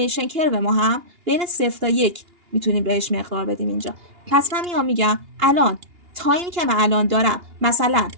کرو ما هم بین 0 تا 1 میتونیم بهش مقدار بدیم اینجا. پس من میگم الان تایمی که من الان دارم، مثلا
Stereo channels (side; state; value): left; late; 2.8 ms